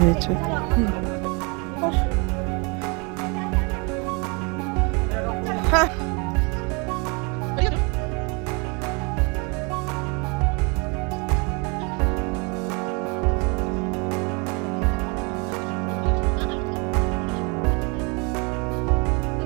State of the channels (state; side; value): quieter; left; 31.5 dB